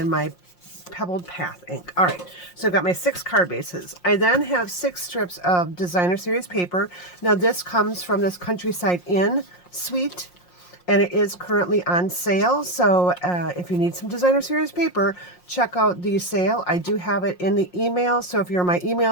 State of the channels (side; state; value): right; late; 5.6 ms